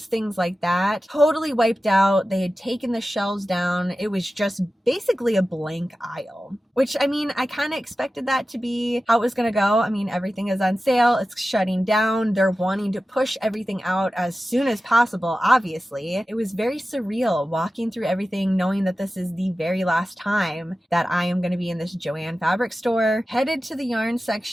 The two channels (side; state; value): both; normal; correlation 0.94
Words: things like that, totally wiped out. They had taken the shelves down. It was just basically a blank aisle, which, I mean, I kind of expected that to be how it was going to go. I mean, everything is on sale. It's shutting down. They're wanting to push everything out as soon as possible, obviously. It was very surreal walking through everything, knowing that this is the very last time that I am going to be in this Joann Fabrics store. Headed to the yarn